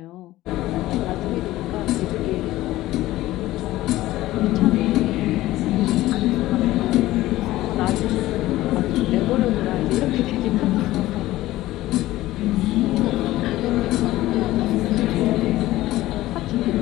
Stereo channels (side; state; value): right; quieter; 16.3 dB